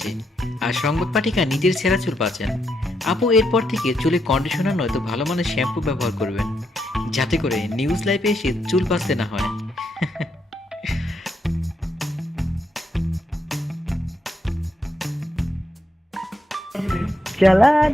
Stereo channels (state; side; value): normal; both; correlation 0.79